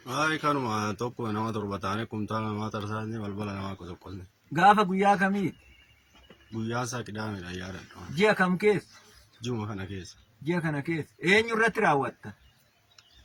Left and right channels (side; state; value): both; identical; correlation 1.00